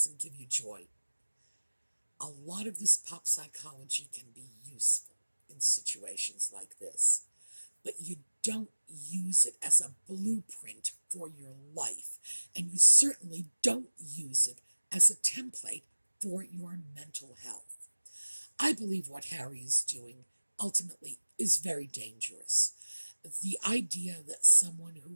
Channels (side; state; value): both; inverted; correlation -1.00